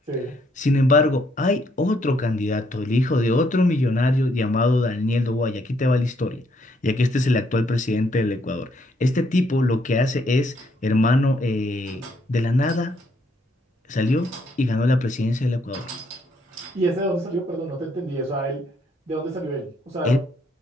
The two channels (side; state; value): both; normal; correlation 0.71